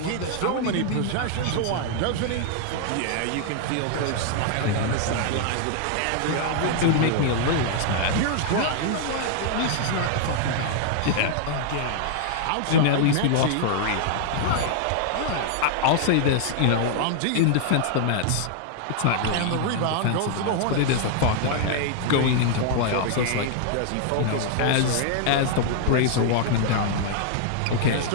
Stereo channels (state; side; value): different; both; correlation 0.00